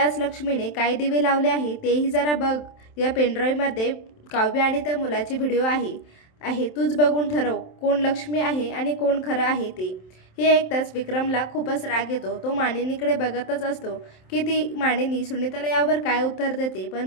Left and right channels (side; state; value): right; late; 27 ms